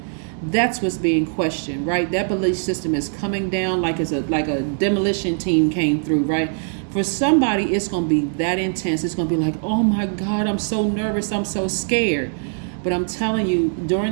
that's what's being questioned, right? That belief system is coming down like a demolition team came through, right? For somebody, it's going to be that intense. It's going to be like, oh my God, I'm so nervous, I'm so scared. But I'm telling you,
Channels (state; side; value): silent; left; 65 dB below the other